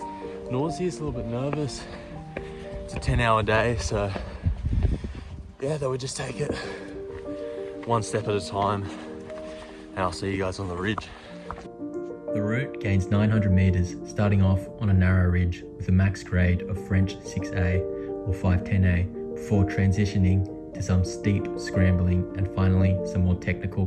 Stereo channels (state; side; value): identical; both; correlation 1.00